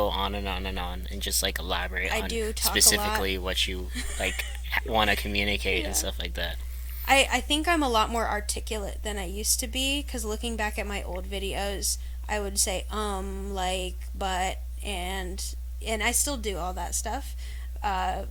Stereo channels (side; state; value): both; identical; correlation 1.00